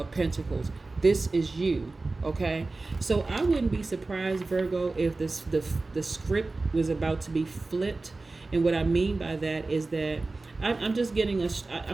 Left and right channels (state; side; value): quieter; left; 3.4 dB